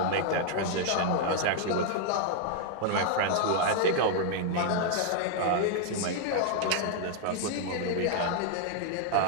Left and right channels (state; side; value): different; both; correlation 0.00